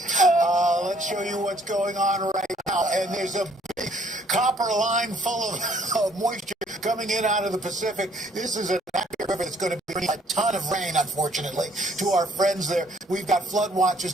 Let's show you what's going on right now. And there's a big copper line full of moisture coming in out of the Pacific. This is an active river that's going to bring a ton of rain, unfortunately, to our friends there. We've got flood watches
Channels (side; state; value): both; normal; correlation 0.63